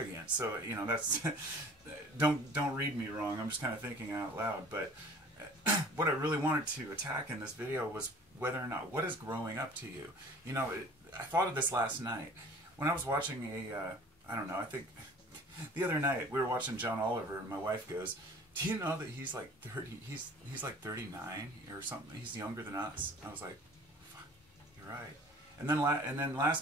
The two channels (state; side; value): normal; both; correlation 0.47